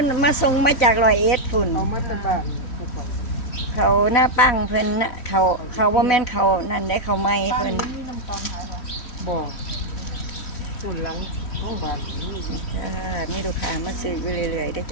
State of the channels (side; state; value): right; late; 3.1 ms